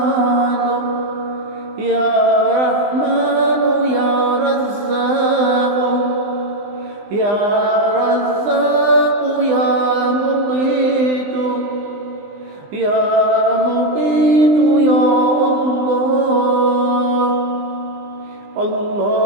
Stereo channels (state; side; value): late; left; 20 ms